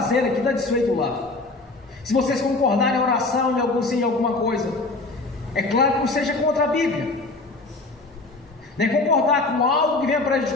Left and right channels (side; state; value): right; quieter; 3.3 dB